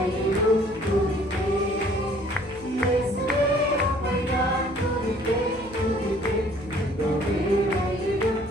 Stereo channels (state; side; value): noise; left; hum, 19 dB below the sound